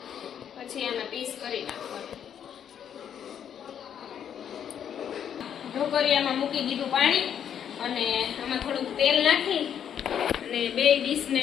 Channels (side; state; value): right; quieter; 8.9 dB